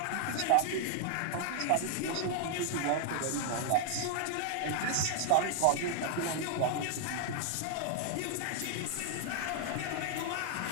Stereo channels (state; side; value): different; both; correlation 0.00